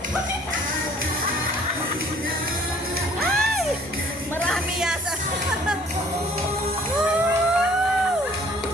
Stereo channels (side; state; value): both; normal; correlation 0.55